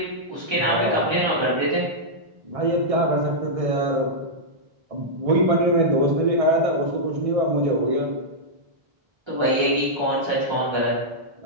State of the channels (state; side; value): late; left; 1.3 ms